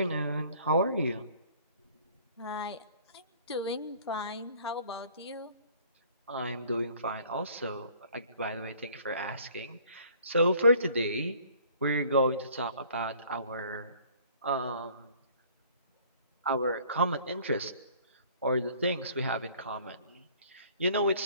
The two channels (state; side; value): inverted; both; correlation -0.54